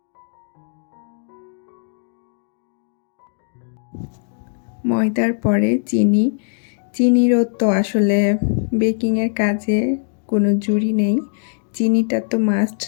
ময়দার পরে চিনিরও তো আসলে বেকিংয়ের কাজে কোনো জুড়ি নেই, চিনিটা তো মাস্ট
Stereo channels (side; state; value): right; silent; digital silence